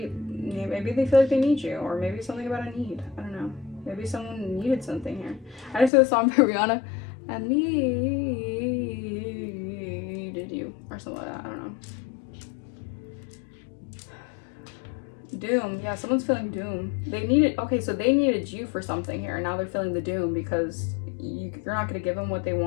they feel like they need you. Or maybe something about a need. I don't know. Maybe someone needed something here. I just heard a song by Rihanna. I needed you. Or something like that. I don't know. Doom. Yeah, someone's feeling doom. They needed, okay, so they needed you for something here. And now they're feeling the doom because you're not going to give them what they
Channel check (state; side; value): drops out; right; at 5.9 s